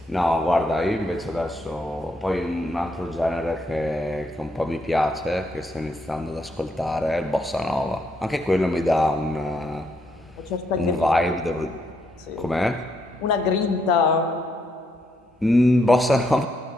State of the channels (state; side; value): normal; both; correlation 0.77